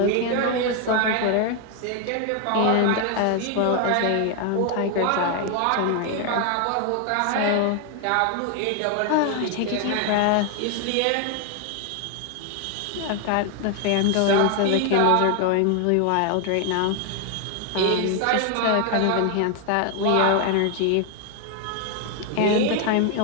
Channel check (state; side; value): different; both; correlation 0.01